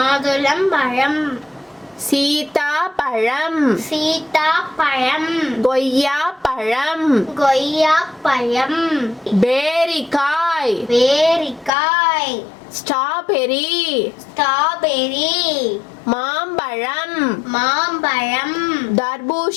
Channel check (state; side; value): drops out; right; at 11.7 s